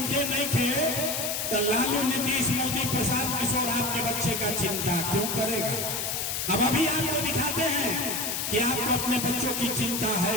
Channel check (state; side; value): noise; left; hiss, 1 dB below the sound